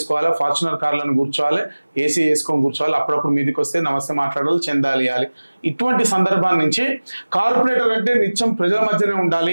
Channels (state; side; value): inverted; both; correlation -1.00